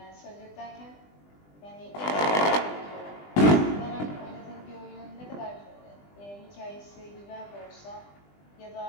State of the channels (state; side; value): late; right; 20 ms